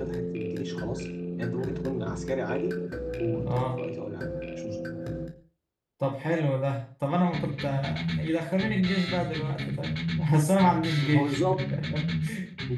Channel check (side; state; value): both; identical; correlation 1.00